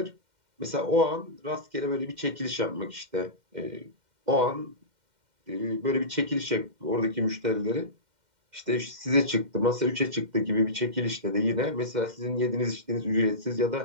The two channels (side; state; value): left; late; 2.1 ms